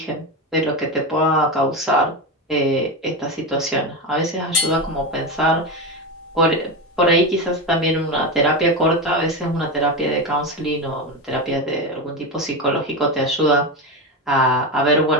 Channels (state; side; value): normal; both; correlation 0.16